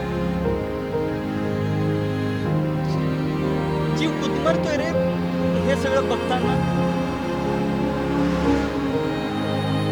जीव गुदमरतोय रे हे सगळं बघताना.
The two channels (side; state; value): both; identical; correlation 1.00